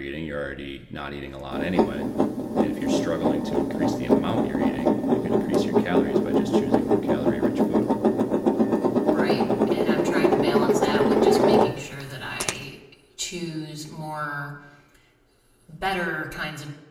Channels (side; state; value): both; identical; correlation 1.00